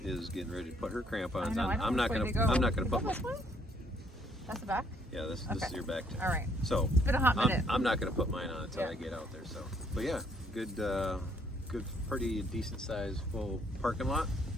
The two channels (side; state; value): both; normal; correlation 0.67